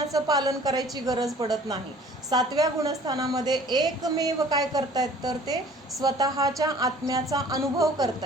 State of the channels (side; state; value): both; normal; correlation 0.51